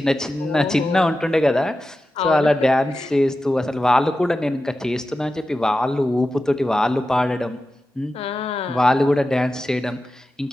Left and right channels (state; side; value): normal; both; correlation 0.92